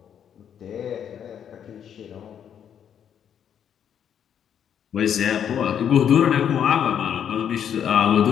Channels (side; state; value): right; quieter; 8.8 dB